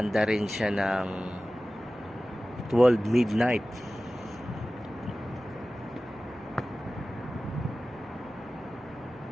rin siya ng 12 midnight.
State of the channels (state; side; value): noise; right; rumble, 25 dB below the sound